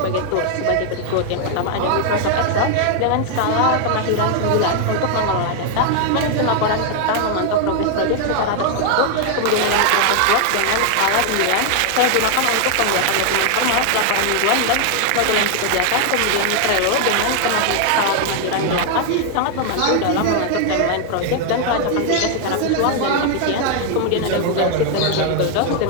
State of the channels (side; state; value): both; different; correlation 0.00